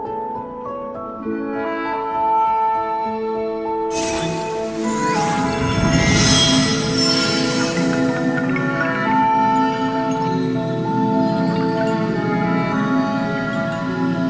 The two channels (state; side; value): identical; both; correlation 1.00